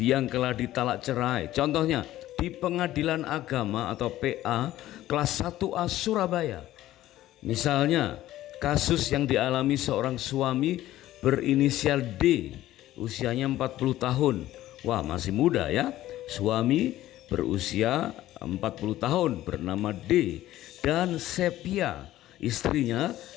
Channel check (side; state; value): right; quieter; 14.5 dB